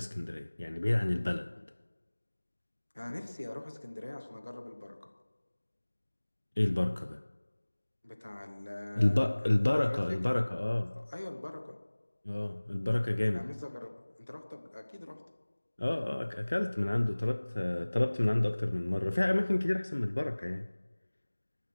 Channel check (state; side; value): inverted; both; correlation -1.00